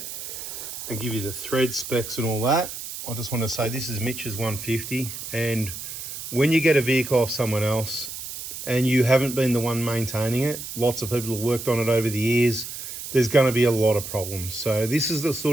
and give you the thread specs and all that. I just want to say this is Mitch's 150, and when you get a vehicle off someone else and you haven't been the one maintaining it, lots of people have worked on it over the years, there's going to be a lot of problems. So this is the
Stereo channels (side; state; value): right; noise; hiss, 9 dB below the sound